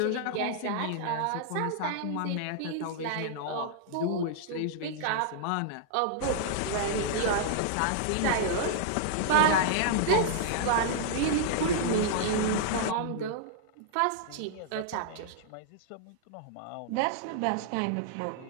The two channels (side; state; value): both; different; correlation -0.01